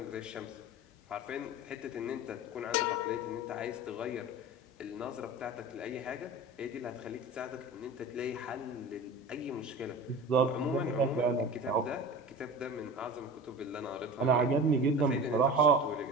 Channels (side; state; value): both; normal; correlation 0.33